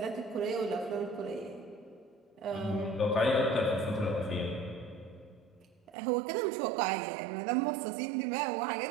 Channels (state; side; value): drops out; left; at 6.0 s